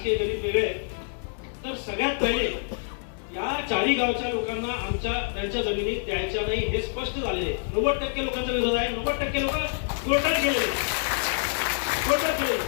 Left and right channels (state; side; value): silent; right; 60 dB below the other